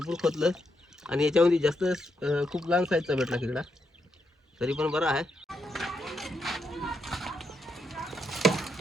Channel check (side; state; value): both; normal; correlation 0.80